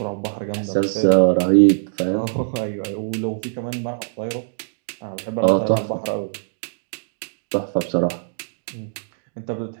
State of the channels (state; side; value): silent; left; digital silence